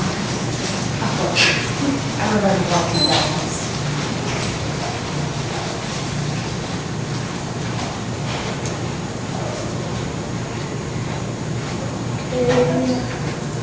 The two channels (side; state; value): both; identical; correlation 1.00